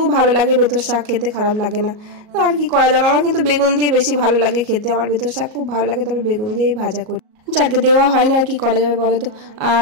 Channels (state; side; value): late; left; 38 ms